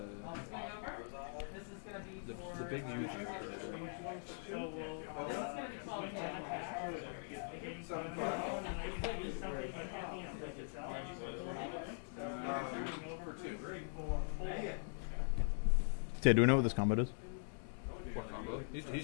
the big Yu-Gi-Oh card, right? Yeah, do we know what this combo does? What combo? He's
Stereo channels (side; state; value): right; silent; digital silence